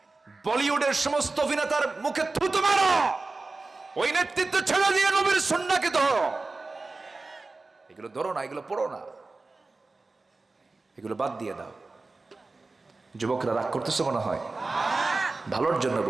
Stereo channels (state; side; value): quieter; left; 3.5 dB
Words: বলিউডের সমস্ত অভিনেতার মুখে থুতু মারো, ওই নেতৃত্ব ছেড়ে দিয়ে নবীর সুন্নাহকে ধরো। এগুলো ধরো না, এগুলো পড়ো না, এগুলো বাদ দিয়ে দাও। যুবকরা রাগ করতেছে মনে হয়? ভালোর জন্য